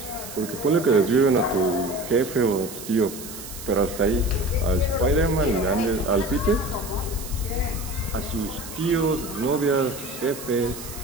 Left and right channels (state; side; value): noise; right; hiss, 12 dB below the sound